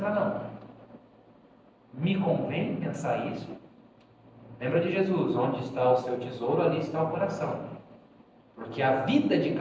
não. Me convém pensar isso? Lembra de Jesus: onde está o seu tesouro, ali está o coração. Porque a vida de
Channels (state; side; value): identical; both; correlation 1.00